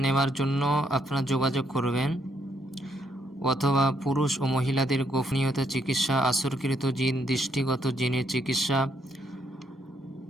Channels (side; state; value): both; normal; correlation 0.74